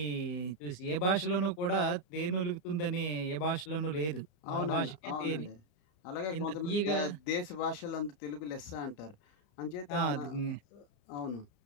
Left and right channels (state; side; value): late; right; 33 ms